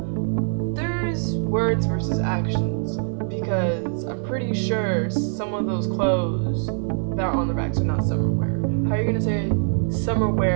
there's words versus actions, because I'm pretty sure some of those clothes that are on the racks are not summer wear. How are you gonna say summer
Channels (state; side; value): silent; left; digital silence